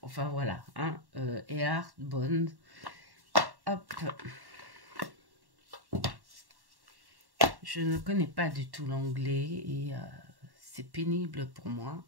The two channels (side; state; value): left; late; 1.1 ms